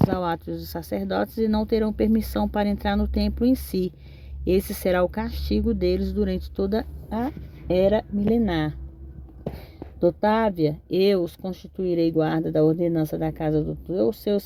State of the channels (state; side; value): identical; both; correlation 1.00